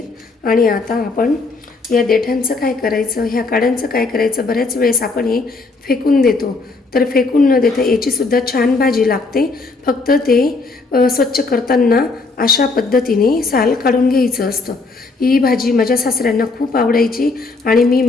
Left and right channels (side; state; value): right; quieter; 3.8 dB